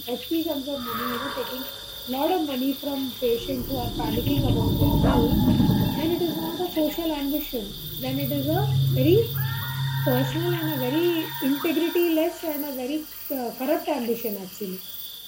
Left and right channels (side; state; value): both; identical; correlation 1.00